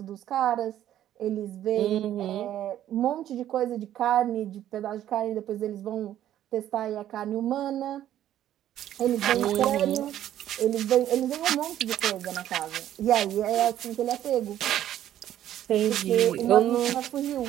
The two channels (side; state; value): left; quieter; 11.8 dB